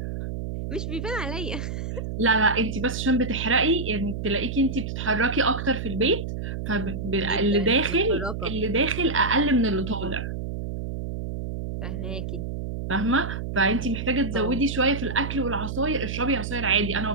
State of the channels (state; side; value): noise; right; hum, 5 dB below the sound